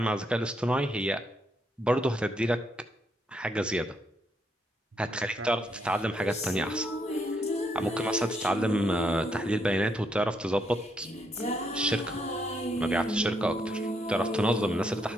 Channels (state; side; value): normal; both; correlation 0.75